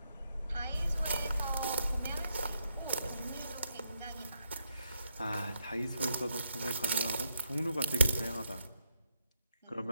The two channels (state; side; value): inverted; both; correlation -0.79